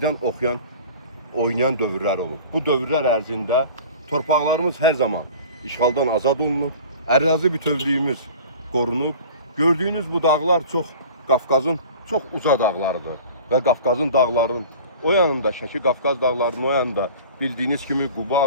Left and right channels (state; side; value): inverted; both; correlation -0.42